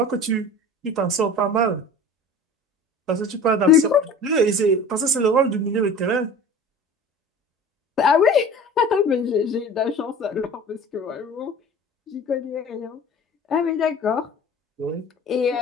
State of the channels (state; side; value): normal; both; correlation 0.40